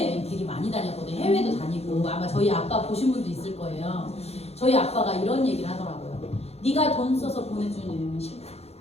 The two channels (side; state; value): right; late; 0.30 ms